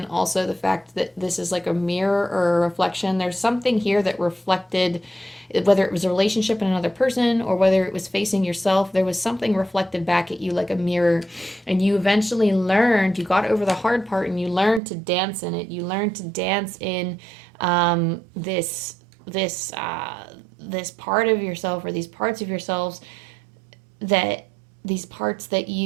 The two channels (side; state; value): left; drops out; at 14.8 s